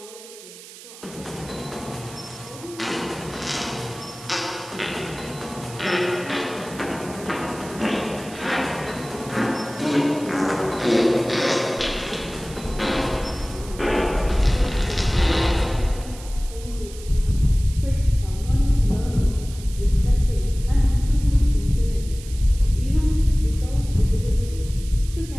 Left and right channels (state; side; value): noise; right; hiss, 17 dB below the sound